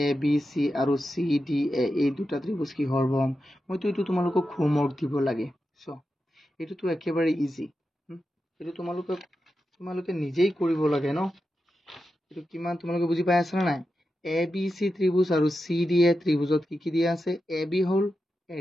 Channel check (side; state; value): both; normal; correlation 0.90